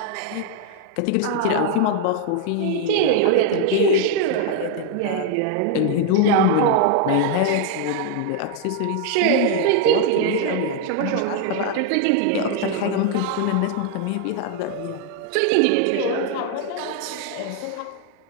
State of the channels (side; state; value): both; different; correlation 0.00